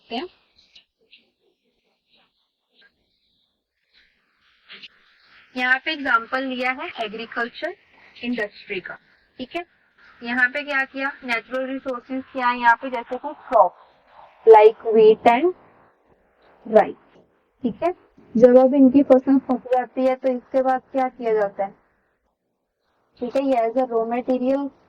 हैं। यहाँ पे एग्जांपल लिया है एग्रीकल्चर इंडस्ट्री का, ठीक है। यहाँ पे क्या किया, नेचुरल रिसोर्सेज क्या है यहाँ पे, जैसे कि क्रॉप लाइक व्हीट एंड राइस, ठीक है। जब अब इनकी फसल पक जाती है तो इसके बाद क्या किया जाता है, ठीक है, ये एज अ रॉ मटेरियल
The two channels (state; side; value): identical; both; correlation 1.00